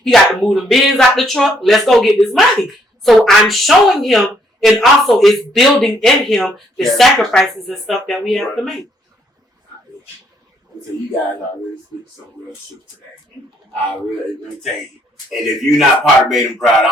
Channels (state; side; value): normal; both; correlation 0.69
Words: He got to move them bins out the truck. Let's go get this money. So I'm showing him, and also it's building in him the sacrifices and stuff that we have to make. So you guys are really speaking some real truth today. Let me tell you. And if you're not part of Made In Broward,